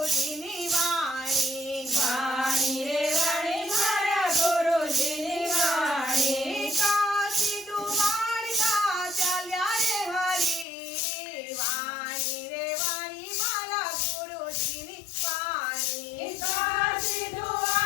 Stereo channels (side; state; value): right; drops out; at 10.7 s